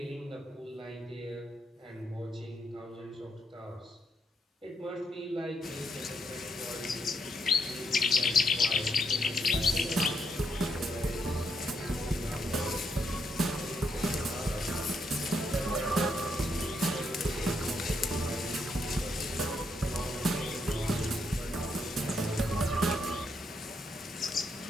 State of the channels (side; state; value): both; normal; correlation 0.77